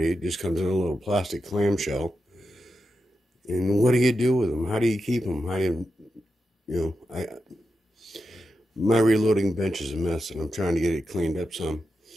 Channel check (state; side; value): normal; both; correlation 0.88